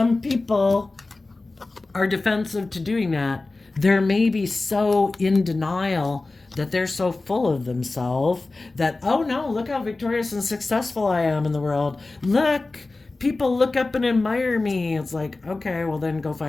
people are defensive to doing that. They're maybe so in denial that they're so full of themselves that, oh no, look how victorious and successful I am in the world. Look, people look up and admire me. It's like, okay, well then go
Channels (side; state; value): right; quieter; 3.3 dB